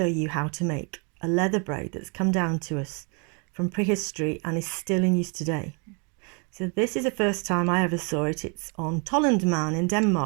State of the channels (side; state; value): left; quieter; 34.3 dB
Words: you how to make a leather braid that's come down to us from prehistory and is still in use today. So this is the first time I ever saw it. It's on Tollund Man in